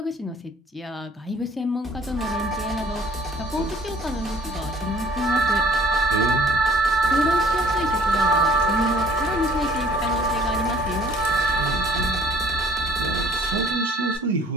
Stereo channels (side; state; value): both; normal; correlation 0.55